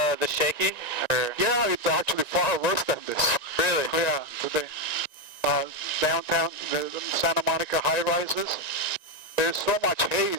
shaky, or? Yeah, it's actually far worse than this. Really? Yeah, today. Downtown, the Santa Monica high-rises, there's so much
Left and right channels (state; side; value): late; right; 1.9 ms